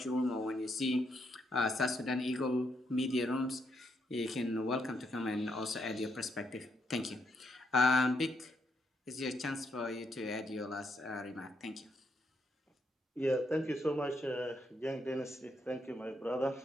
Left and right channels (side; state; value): both; normal; correlation 0.78